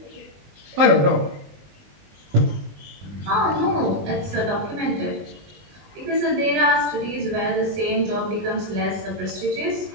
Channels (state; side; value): late; left; 20 ms